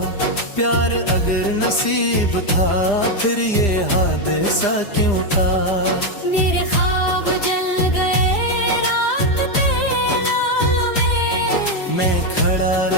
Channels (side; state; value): right; late; 5.0 ms